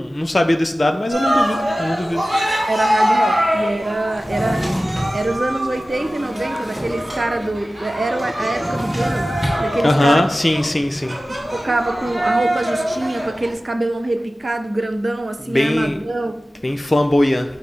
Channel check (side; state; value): both; normal; correlation 0.96